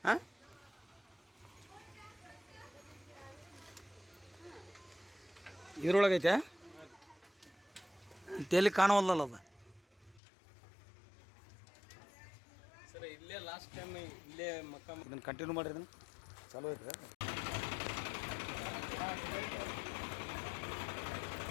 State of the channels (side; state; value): right; drops out; at 10.2 s